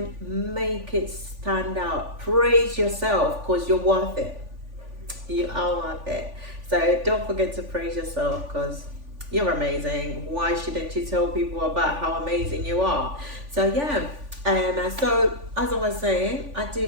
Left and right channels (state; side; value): late; left; 3.5 ms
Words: make it stand out. Praise yourself because you're worth it. You are worth it. So don't forget to praise yourself because you're amazing. Why shouldn't you tell people about how amazing you are? So yeah. So as I was saying, I